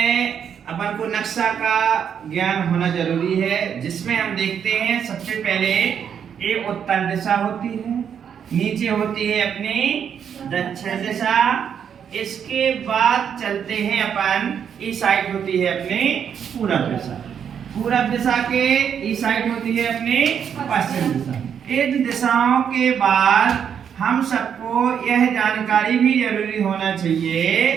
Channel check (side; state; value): left; quieter; 8.0 dB